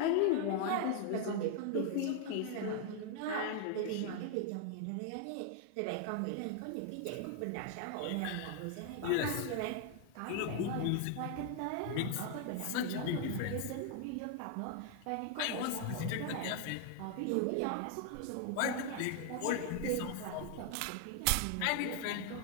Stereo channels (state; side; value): different; both; correlation 0.00